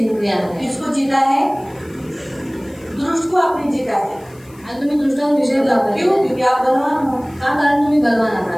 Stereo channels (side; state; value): left; noise; hiss, 27 dB below the sound